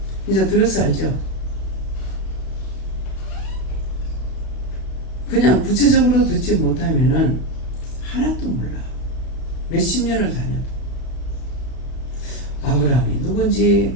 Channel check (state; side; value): late; right; 32 ms